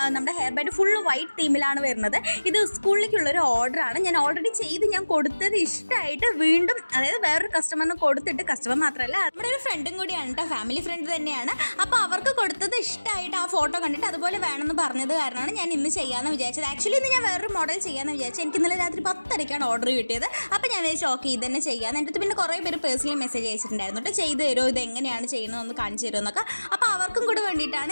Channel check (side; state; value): both; inverted; correlation -1.00